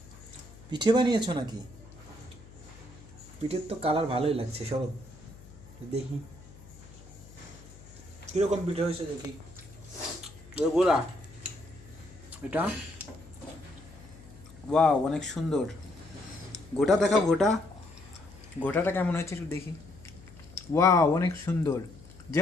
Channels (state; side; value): noise; left; hum, 20 dB below the sound